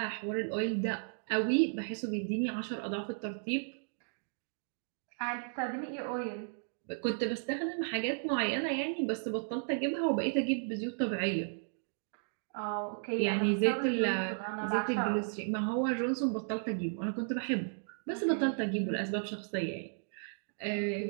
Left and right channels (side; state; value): left; silent; digital silence